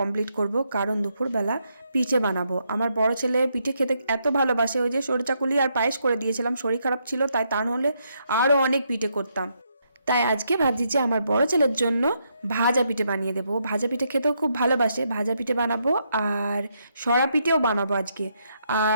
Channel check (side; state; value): both; inverted; correlation -0.77